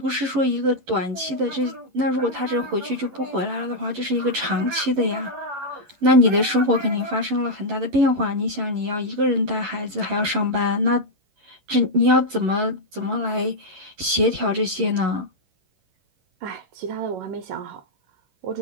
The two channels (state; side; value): late; left; 11 ms